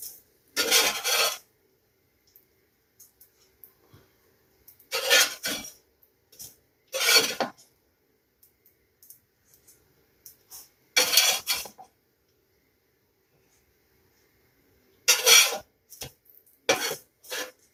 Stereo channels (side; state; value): both; identical; correlation 1.00